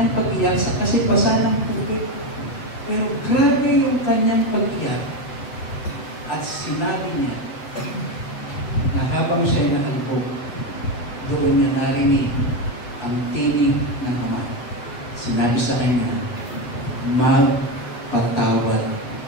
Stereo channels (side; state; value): right; late; 8.2 ms